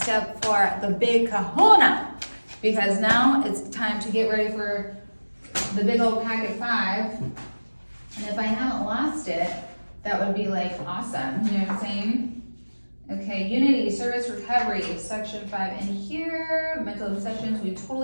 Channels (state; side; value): inverted; both; correlation -1.00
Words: 4, the big kahuna. Because now it's time to get ready for the big old packet 5. And if I haven't lost it, that would be like awesome. You know what I'm saying? Okay, unity, service, recovery, section 5 in here. Mental obsessions, we